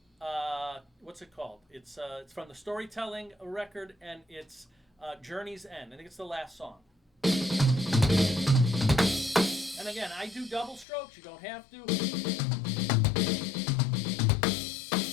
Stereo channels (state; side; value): drops out; right; at 10.9 s